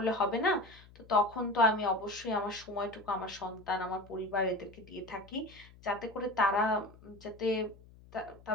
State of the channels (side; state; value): left; noise; hum, 22 dB below the sound